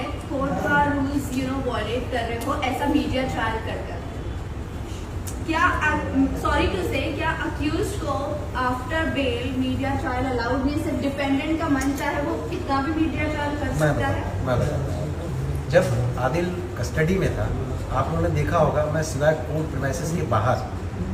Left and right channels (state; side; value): identical; both; correlation 1.00